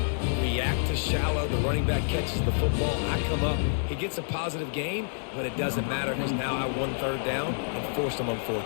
react to shallow. The running back catches the football. I come up. He gets a positive gain, but it doesn't matter because now I won 3rd down and forced him on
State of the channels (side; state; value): right; silent; digital silence